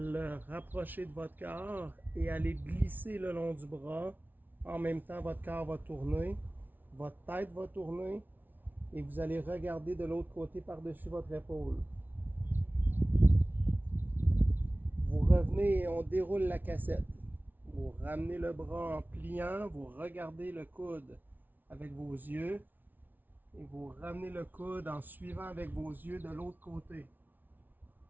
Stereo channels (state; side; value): late; left; 0.086 ms